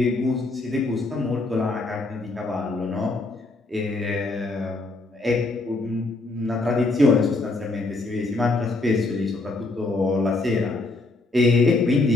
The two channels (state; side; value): quieter; right; 3.1 dB